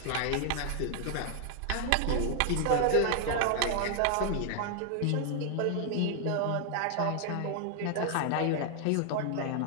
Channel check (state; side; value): different; both; correlation 0.00